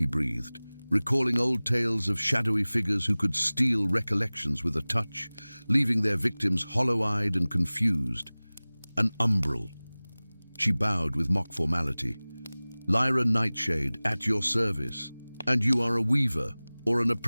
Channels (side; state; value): both; inverted; correlation -0.99